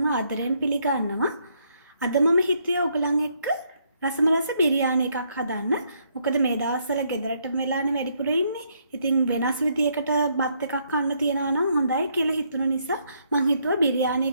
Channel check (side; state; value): both; inverted; correlation -0.72